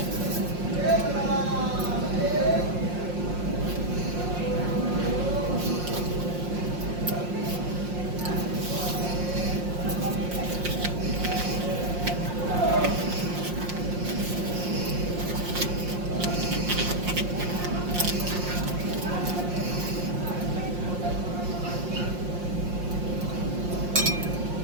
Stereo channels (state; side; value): late; left; 5.6 ms